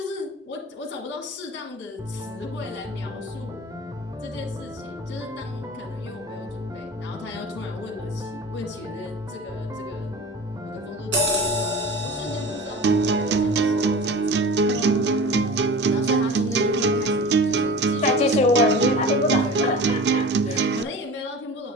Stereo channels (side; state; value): both; normal; correlation 0.37